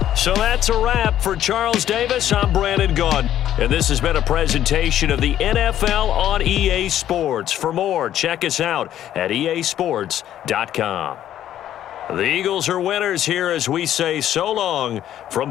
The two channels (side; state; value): right; quieter; 11.6 dB